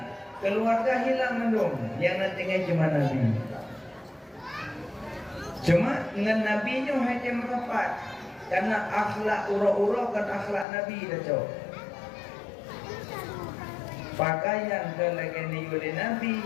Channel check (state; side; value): drops out; right; at 10.7 s